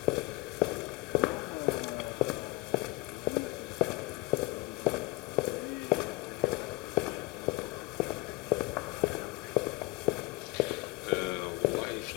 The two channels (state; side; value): quieter; right; 23.7 dB